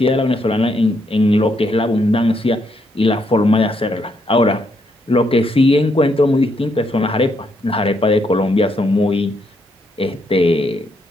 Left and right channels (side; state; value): both; normal; correlation 0.76